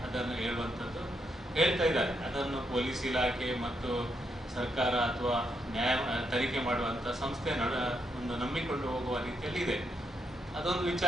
ಅದನ್ನು ಹೇಳುವಂಥದ್ದು ಹೇಳ್ತಾ ಇದ್ದಾರೆ. ಅದನ್ನು ಪೊಲೀಸ್ ಇಲಾಖೆ ಮತ್ತು ಸರ್ಕಾರ ಅಥವಾ ತನಿಖೆ ಮಾಡುವಂಥ ಸಂಸ್ಥೆ ಒಂದು ನಂಬಿಕೊಂಡು ಹೋಗುವ ರೀತಿಯಲ್ಲಿ ಇದೆ. ಅದೊಂದು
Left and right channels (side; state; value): both; normal; correlation 0.79